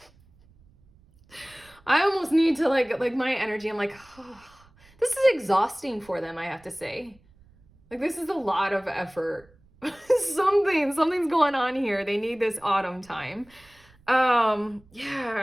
I almost need to like my energy. I'm like, oh, this is exhausting for them, I have to say. Like, this is a lot of effort. Something's going on here. They need this autumn time.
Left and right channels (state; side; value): noise; right; rumble, 29 dB below the sound